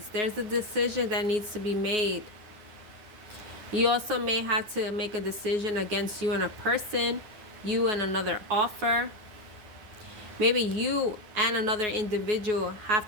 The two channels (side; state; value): left; late; 9.5 ms